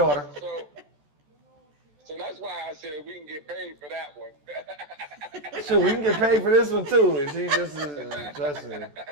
So that's why I said we can get paid for that one. Sure, we can get paid for this one too. And she just trust me. All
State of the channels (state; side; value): late; left; 14 ms